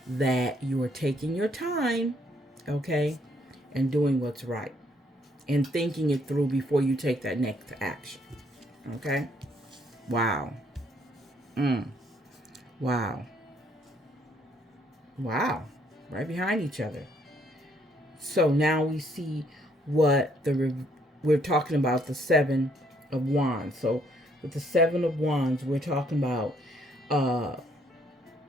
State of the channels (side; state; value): both; normal; correlation 0.68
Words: that you are taking your time, okay, and doing what's right and thinking it through before you take that next action. Okay? Wow. Wow. Wow. Right behind each other. So now we see what we're talking about, the Seven of Wands. So with the Seven of Wands, we're talking about